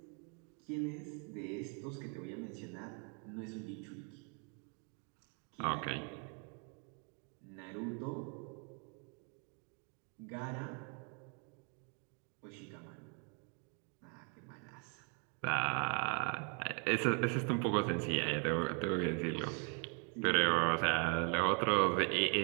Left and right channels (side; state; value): left; quieter; 38.4 dB